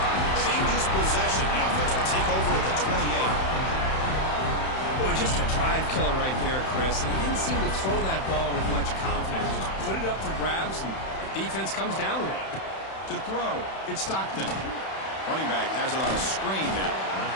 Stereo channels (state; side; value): late; right; 31 ms